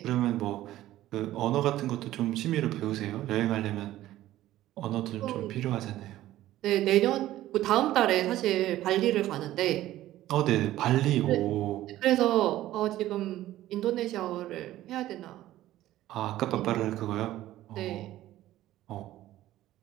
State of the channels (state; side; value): quieter; left; 14.6 dB